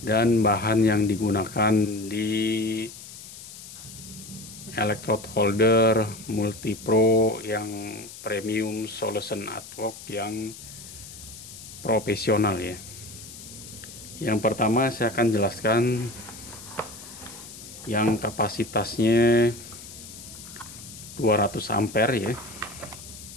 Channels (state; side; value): noise; left; hiss, 15 dB below the sound